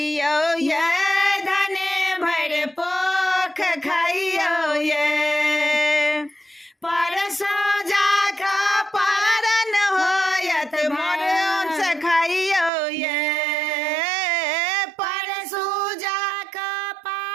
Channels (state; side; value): drops out; left; at 12.7 s